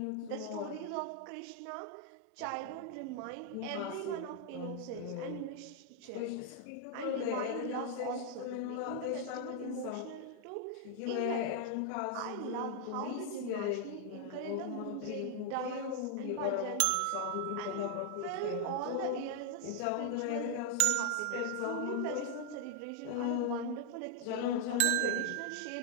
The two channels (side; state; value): both; different; correlation 0.00